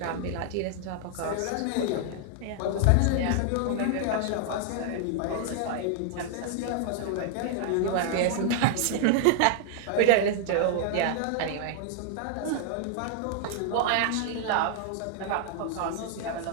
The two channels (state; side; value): different; both; correlation -0.01